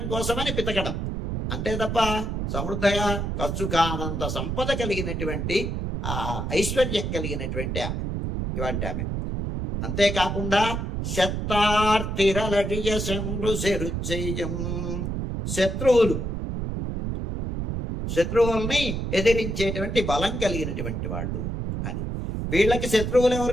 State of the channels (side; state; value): right; noise; rumble, 3 dB below the sound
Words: కోసమని పితకడం అంతే తప్ప సమృద్ధగా ఖర్చు కానంత సంపద కలిగినటువంటి ఆ ఐశ్వర్యం కలిగినటువంటి ఆమె ఇవాంటి ఆమె. అంతేకాకుండా శత్తార్తిరలడియ శంభు శరుచెయ్యం శత్రువుల్ని ఎదిరించేటువంటి బలం కలిగినటువంటి వాళ్ళు అని. వీళ్ళకి శత్రువులు